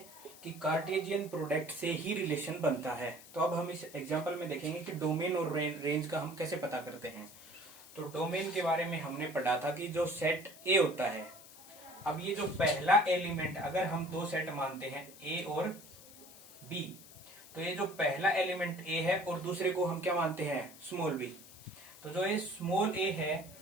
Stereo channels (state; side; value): noise; left; hiss, 19 dB below the sound